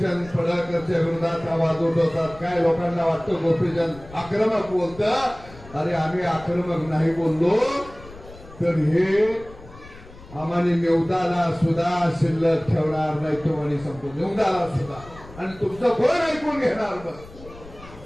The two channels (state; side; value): noise; left; rumble, 19 dB below the sound